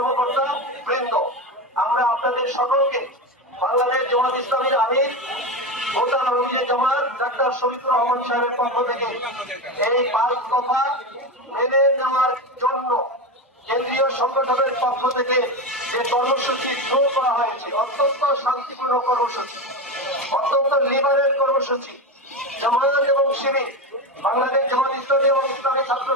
বৃন্দ, আমরা আপনাদের সকলকে বাংলাদেশ জামাত ইসলামীর আমির ভোটার জামাত ডাক্তার শফিকুর রহমান সাহেবের পক্ষ থেকে এই 5 দফা মেনে নেওয়ার জন্য কেন্দ্রীয় সংগঠনের পক্ষ থেকে যে কর্মসূচি শুরু করা হয়েছে, অত্যন্ত শান্তিপূর্ণ কর্মসূচি, অত্যন্ত লিবারেল কর্মসূচি, জামায়াত এবং শিবির বাংলাদেশ জামাত ইসলামী এবং ইসলামী ছাত্র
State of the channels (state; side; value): normal; both; correlation 0.18